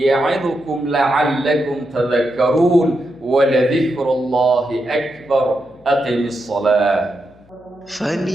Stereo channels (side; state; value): left; noise; hum, 29 dB below the sound